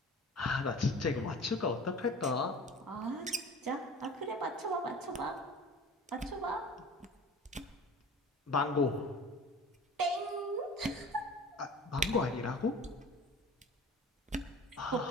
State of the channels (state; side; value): normal; both; correlation 0.41